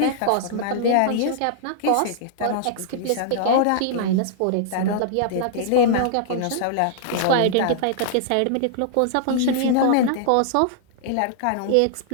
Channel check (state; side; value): different; both; correlation -0.01